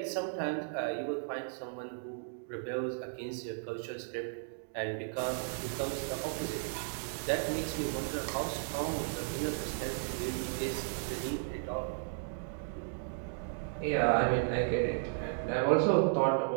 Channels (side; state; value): left; silent; digital silence